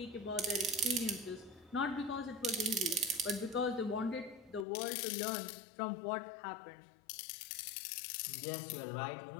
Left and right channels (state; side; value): drops out; right; at 4.7 s